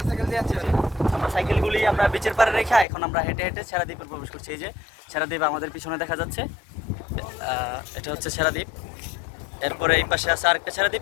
আমরা সাইকেলগুলি আমরা বিচের পাড়ে রেখে এখন আমরা হেঁটে হেঁটে ছেড়া দ্বীপে প্রবেশ করছি। এই যে ছেড়া দ্বীপ আমাদের পিছনে দেখা যাচ্ছে, এটা হচ্ছে ছেড়া দ্বীপ। এরপরে এই পাশে আছে আরেকটা ছেড়া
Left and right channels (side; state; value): right; drops out; at 2.9 s